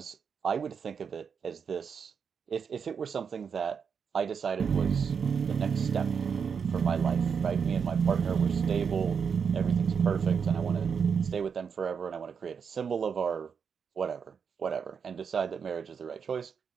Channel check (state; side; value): quieter; left; 6.5 dB